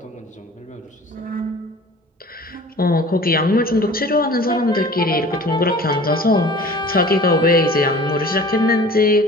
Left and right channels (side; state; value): both; normal; correlation 0.44